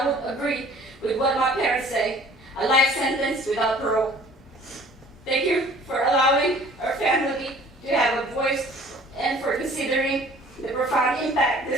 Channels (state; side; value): normal; both; correlation 0.52